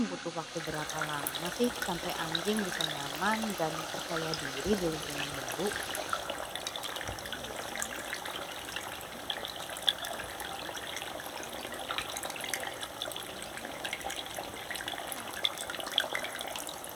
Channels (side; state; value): both; identical; correlation 1.00